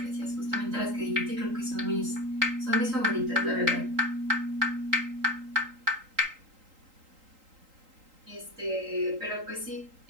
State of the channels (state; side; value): late; left; 3.8 ms